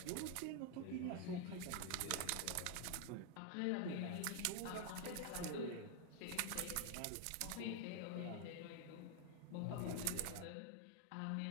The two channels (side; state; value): both; different; correlation 0.00